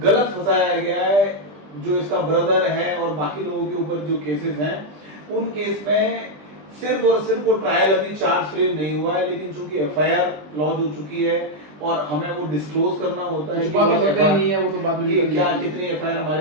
गलत फंसाया गया है, जो इसका ब्रदर है और बाकी लोगों के ऊपर जो केसेस हैं उन केस में सिर्फ और सिर्फ वो ट्रायल अभी चार्ज फ्रेम नहीं हुआ है, लेकिन चूंकि एफआईआर लॉन्च हो चुकी है और हमें वो डिस्क्लोज करना होता है कि क्या कितनी एफआईआर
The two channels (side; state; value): left; late; 20 ms